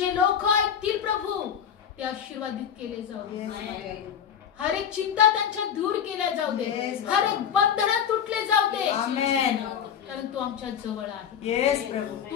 लोक ऐकतील प्रभू, ते आशीर्वादित केले जाऊ दे. हर एक चिंता त्यांच्या दूर केल्या जाऊ दे. हर एक बंधन तुटले जाऊ दे. कारण तू आमच्या जवळ आहे.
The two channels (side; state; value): right; quieter; 8.3 dB